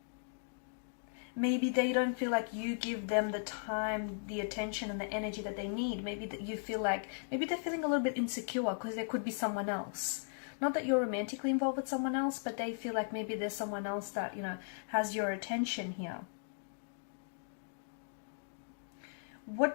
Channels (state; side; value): silent; right; digital silence